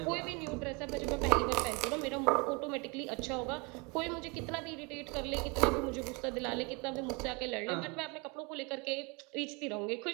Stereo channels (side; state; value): left; quieter; 29.9 dB